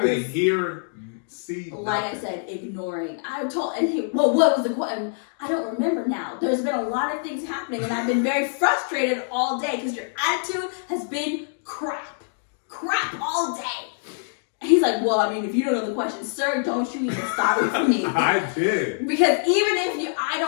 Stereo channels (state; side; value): silent; right; digital silence